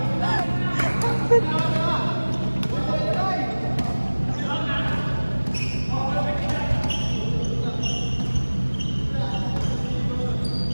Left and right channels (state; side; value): inverted; both; correlation -1.00